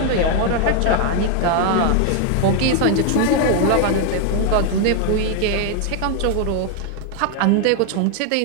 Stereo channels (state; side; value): different; both; correlation 0.01